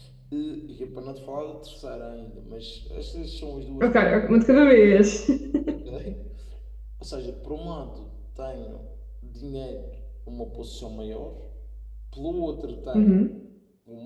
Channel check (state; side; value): identical; both; correlation 1.00